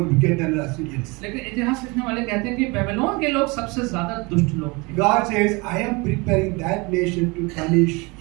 wicked than the Assyrians. लेकिन इतिहास लिखने वाले कहते हैं कि बेबीलोन के लोग सबसे ज्यादा दुष्ट लोग थे। God says, I am preparing that nation to punish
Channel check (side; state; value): left; quieter; 26.7 dB